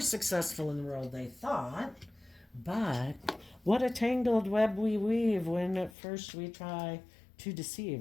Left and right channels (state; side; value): drops out; right; at 5.9 s